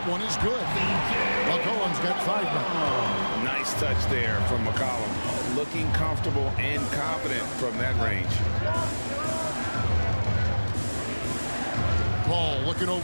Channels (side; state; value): both; inverted; correlation -1.00